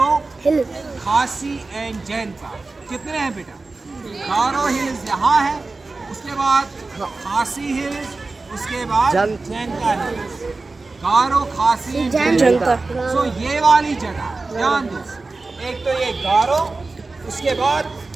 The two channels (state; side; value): quieter; left; 3.6 dB